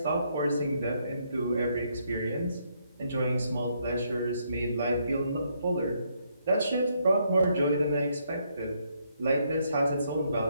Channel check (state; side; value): inverted; both; correlation -0.74